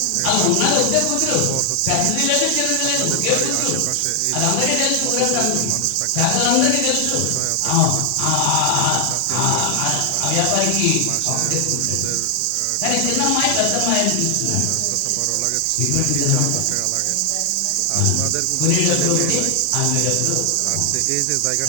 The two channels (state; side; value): different; both; correlation 0.00